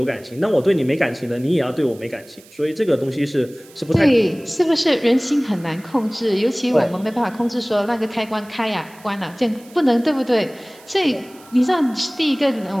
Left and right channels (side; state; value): right; noise; hiss, 24 dB below the sound